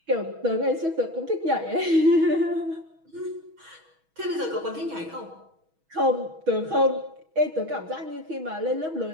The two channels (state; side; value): late; left; 6.2 ms